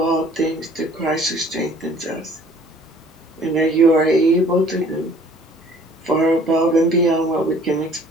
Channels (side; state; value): both; normal; correlation 0.54